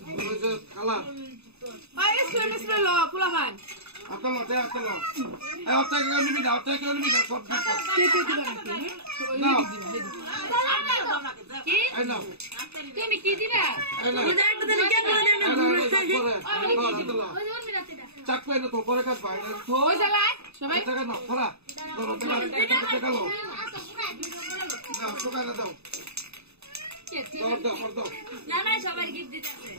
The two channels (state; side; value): late; left; 0.79 ms